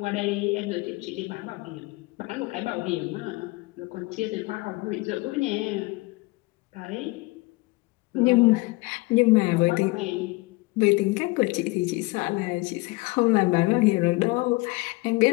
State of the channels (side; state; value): right; quieter; 23.5 dB